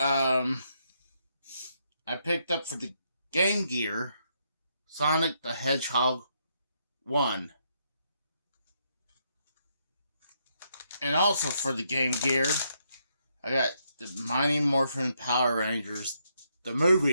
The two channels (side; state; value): both; inverted; correlation -0.77